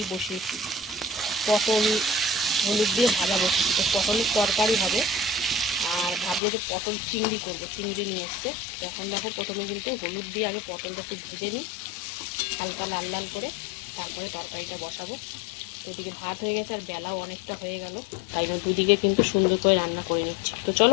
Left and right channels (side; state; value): right; drops out; at 6.4 s